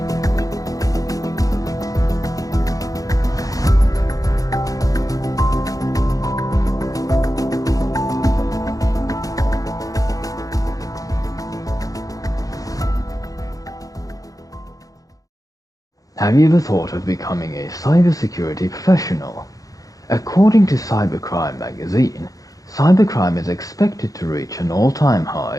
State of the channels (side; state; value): right; late; 0.17 ms